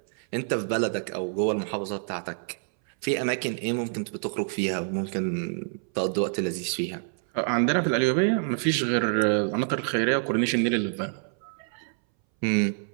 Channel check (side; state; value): left; silent; 60 dB below the other